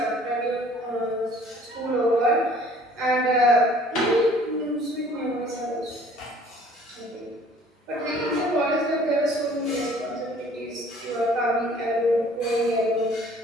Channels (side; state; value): both; normal; correlation 0.54